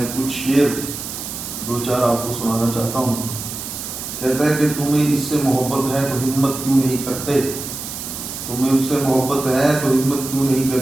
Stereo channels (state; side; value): noise; right; hiss, 8 dB below the sound